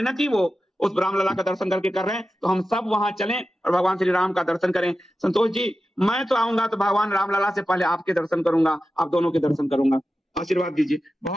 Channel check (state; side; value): normal; both; correlation 0.93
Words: वो उस रामलला का दर्शन करके कर रहे हैं। तो हम सब वहां चलें और भगवान श्री राम का दर्शन करें। संतोष जी, मैं तो आऊंगा तो भगवान रामलला से पहले आपके दर्शन करूंगा, आप दोनों के दर्शन करूंगा। आशीर्वाद दीजिए।